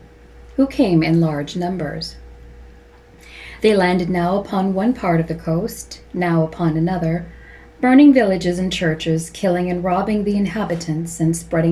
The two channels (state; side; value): identical; both; correlation 1.00